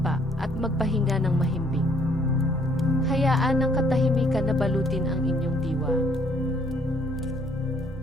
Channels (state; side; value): normal; both; correlation 0.65